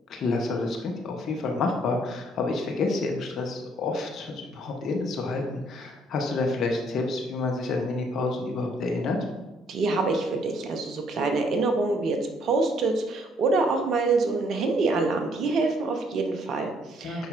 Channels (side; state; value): both; normal; correlation 0.66